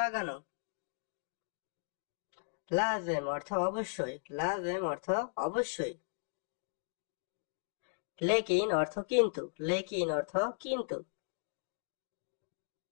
লাজেম অর্থ অবশ্যই। লাজেম অর্থ অবশ্যই। লেকিন অর্থ কিন্তু। লেকিন অর্থ কিন্তু।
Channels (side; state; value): right; silent; digital silence